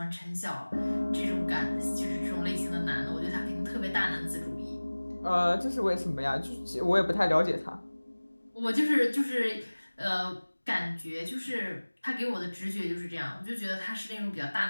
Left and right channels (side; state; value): both; inverted; correlation -1.00